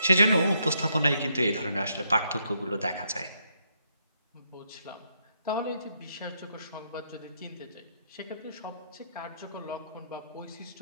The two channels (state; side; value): inverted; both; correlation -0.77